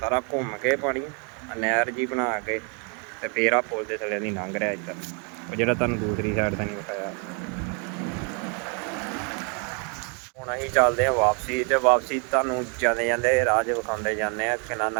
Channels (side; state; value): left; quieter; 37.4 dB